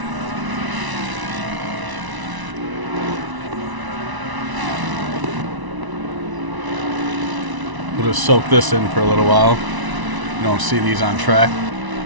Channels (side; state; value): left; late; 1.0 ms